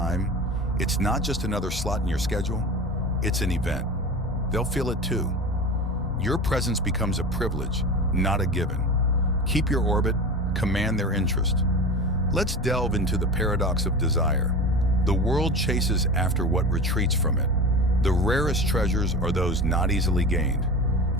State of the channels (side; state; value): both; normal; correlation 0.30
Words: it's not just another slot in your schedule, it's an event. They'll feel it too. Your presence becomes a privilege, not a given. Keep your orbit, command their interest. Let's delve into the paradox of desire. The world chases after what retreats from it. The rarest treasures are those not easily gained.